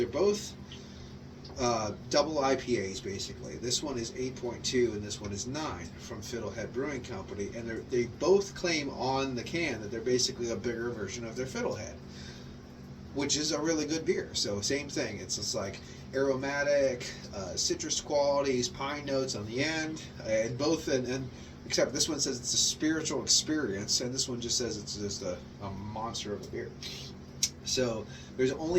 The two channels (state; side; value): identical; both; correlation 1.00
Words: both double IPAs basically. This one is 8.2 and this one is 9 from Fiddlehead Brewing Company, and they both claim on the can that they're basically a bigger version of their Fiddlehead, which is a really good beer. So same thing. It's just like aromatic, citrus qualities, pine notes on the end, and both. And except this one says it's a spiritual experience, and this one just says it's just a monster of a beer. So there's